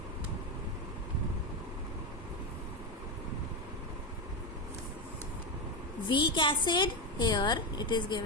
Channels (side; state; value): both; normal; correlation 0.12